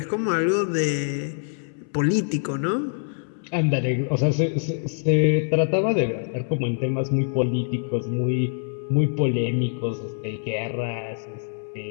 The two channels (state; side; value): silent; right; 62 dB below the other